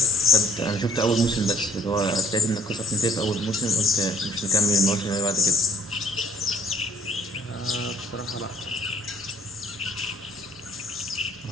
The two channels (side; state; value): both; normal; correlation 0.57